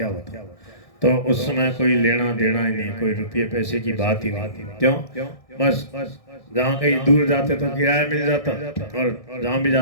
होता। तो उस समय कोई लेना देना ही नहीं, कोई रुपये पैसे की बात ही नहीं। क्यों? बस जहाँ कहीं दूर जाते तो किराया मिल जाता, और जहाँ भी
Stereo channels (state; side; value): late; right; 1.6 ms